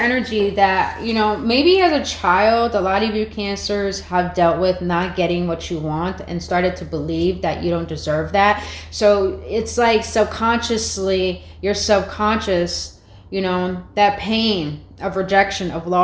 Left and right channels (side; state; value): both; identical; correlation 1.00